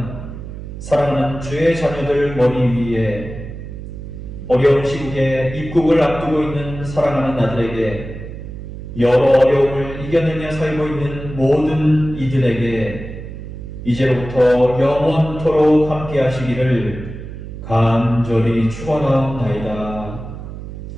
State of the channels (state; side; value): noise; right; hum, 11 dB below the sound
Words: 사랑하는 주의 자녀들 머리 위에 어려운 시국에 입국을 앞두고 있는 사랑하는 아들에게 여러 어려움을 이겨내며 살고 있는 모든 이들에게 이제로부터 영원토록 함께 하시기를 간절히 축원하옵나이다.